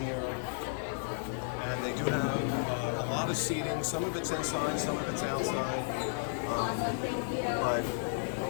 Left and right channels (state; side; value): silent; right; digital silence